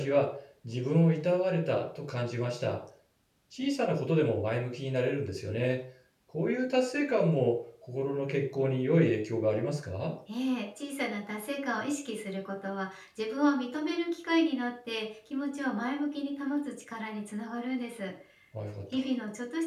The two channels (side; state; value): both; identical; correlation 1.00